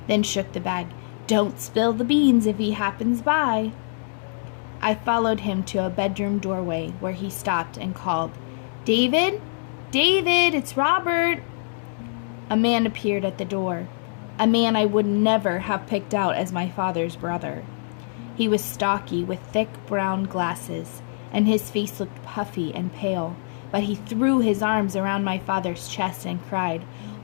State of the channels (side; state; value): right; silent; digital silence